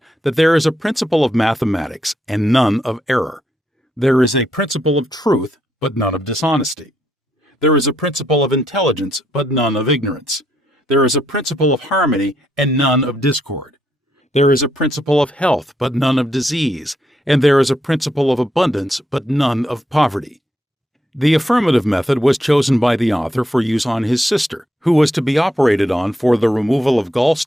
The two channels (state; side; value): normal; both; correlation 0.77